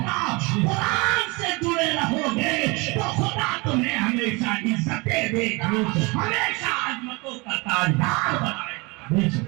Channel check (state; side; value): quieter; left; 26.5 dB